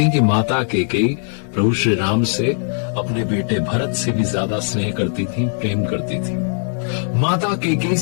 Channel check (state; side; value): silent; right; digital silence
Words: हैं कि माता कैकेयी प्रभु श्री राम से अपने बेटे भरत से भी ज्यादा स्नेह करती थी, प्रेम करती थी। माता कैकेयी